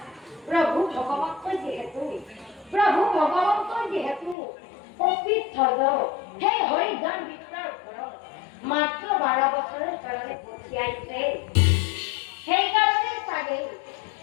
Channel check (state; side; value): drops out; right; at 4.4 s